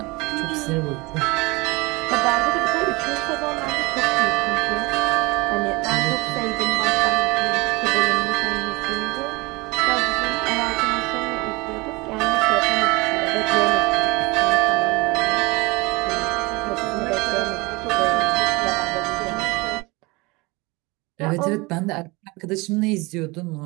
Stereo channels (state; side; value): quieter; left; 24.4 dB